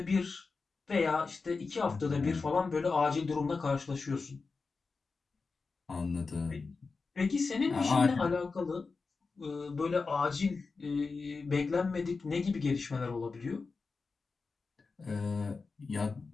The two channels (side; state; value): right; quieter; 4.3 dB